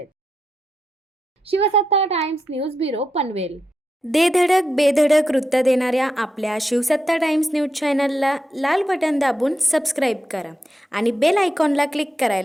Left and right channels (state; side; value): normal; both; correlation 0.86